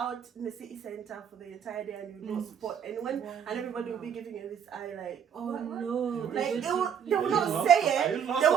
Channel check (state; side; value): quieter; left; 8.2 dB